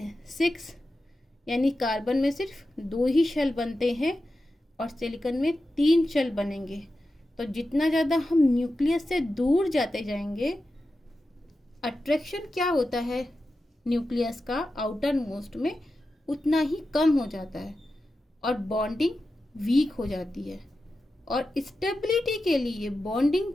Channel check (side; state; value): both; normal; correlation 0.92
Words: 6, यानी कार्बन में सिर्फ 2 ही शेल बनते हैं और सिलिकॉन में 3 शेल बनेंगे। तो जितना ज़्यादा हम न्यूक्लियस से दूर जाते जाएंगे, अट्रैक्शन क्या होता है न्यूक्लियस का आउटर मोस्ट में, उतना ही कम हो जाता है और बॉन्डिंग वीक हो जाती है। और स्टेबिलिटी के लिए बॉन्डिंग